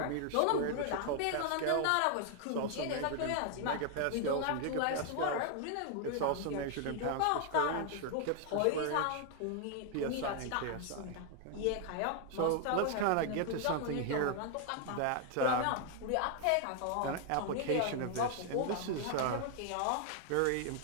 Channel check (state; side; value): different; both; correlation 0.00